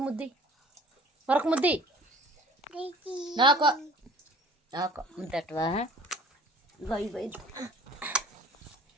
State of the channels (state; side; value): normal; both; correlation 0.48